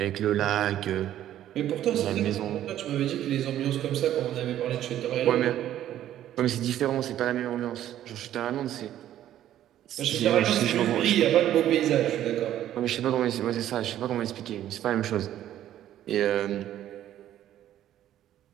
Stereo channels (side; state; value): left; quieter; 12.0 dB